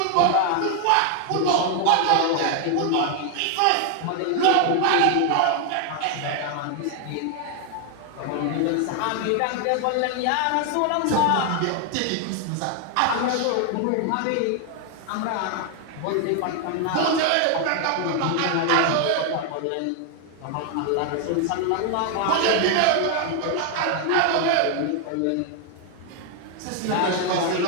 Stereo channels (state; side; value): different; both; correlation 0.00